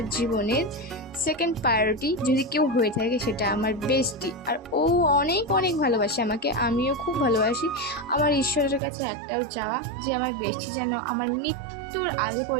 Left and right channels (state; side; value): drops out; left; at 8.8 s